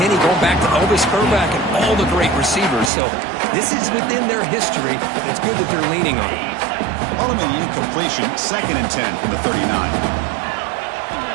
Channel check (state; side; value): drops out; left; at 2.9 s